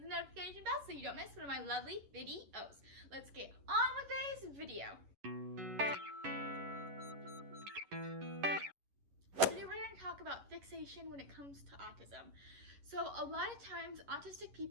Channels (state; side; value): late; left; 11 ms